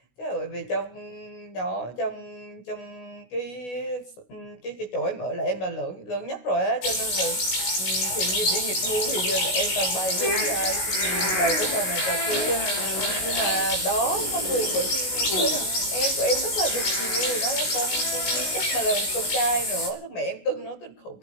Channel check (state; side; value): late; right; 16 ms